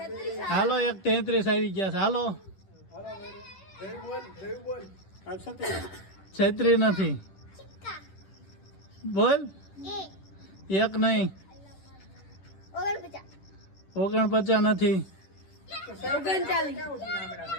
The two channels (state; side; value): late; right; 10 ms